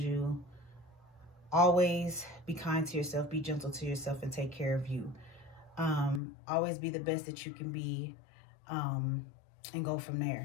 you, always be kind to yourself, be gentle to yourself, and take care of you. Always be the best that you can be, and go from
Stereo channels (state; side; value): drops out; right; at 6.2 s